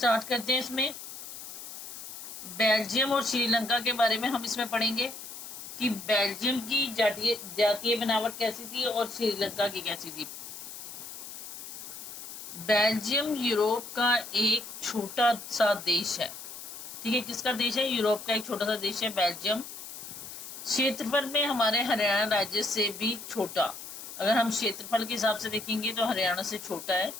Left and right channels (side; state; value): left; noise; hiss, 11 dB below the sound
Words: करते हैं। इसमें बेल्जियम और श्रीलंका के बारे में हम इसमें पढ़ेंगे कि बेल्जियम की जातीय बनावट कैसी थी और श्रीलंका की कैसी थी। बेल्जियम यूरोप का एक छोटा सा देश है। ठीक है, किसका देश है? यूरोप का एक छोटा सा देश है बेल्जियम। क्षेत्रफल में हमारे हरियाणा राज्य से भी छोटा। अगर हम क्षेत्रफल के हिसाब से देखेंगे तो हरियाणा से छोटा है।